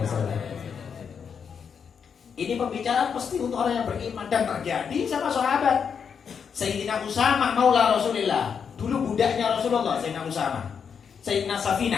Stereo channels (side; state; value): right; quieter; 6.8 dB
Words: wasallam. Ini pembicaraan pasti untuk orang yang beriman dan terjadi sama sahabat. Sayyidina Usamah maula Rasulillah, dulu budaknya Rasulullah. Sayyidina Usamah, Sayyidina